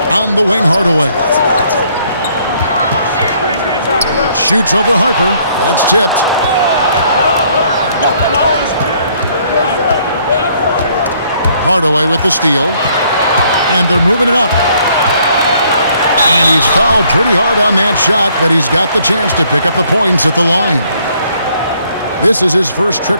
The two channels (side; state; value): both; inverted; correlation -0.65